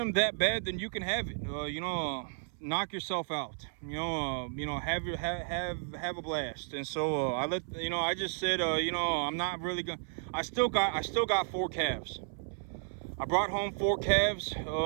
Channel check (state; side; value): silent; left; 56 dB below the other